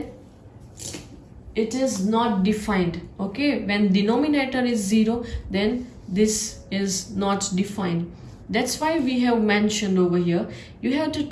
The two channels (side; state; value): both; identical; correlation 1.00